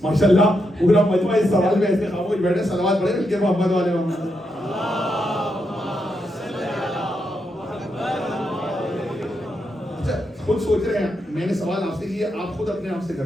ماشاءاللہ پورا مجمع اس سوال میں ایسے خاموش بیٹھے، صلوات پڑھے مل کے محمد والے محمد۔ اچھا خود سوچ رہے ہیں، میں نے سوال آپ سے کیا، آپ خود اپنے آپ سے کر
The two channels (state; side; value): normal; both; correlation 0.83